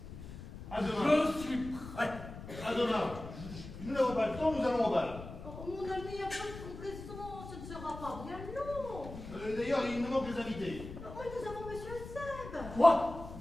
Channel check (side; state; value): left; noise; rumble, 12 dB below the sound